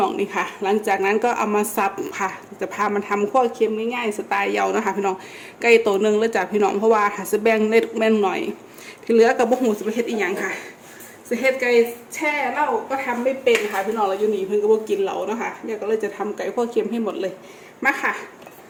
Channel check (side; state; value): both; identical; correlation 1.00